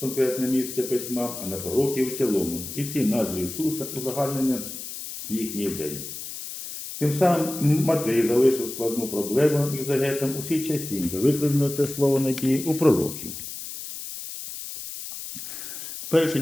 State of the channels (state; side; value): noise; left; hiss, 9 dB below the sound